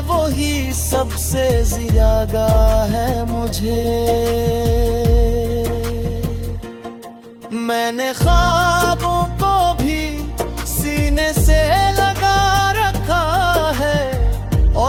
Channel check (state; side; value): identical; both; correlation 1.00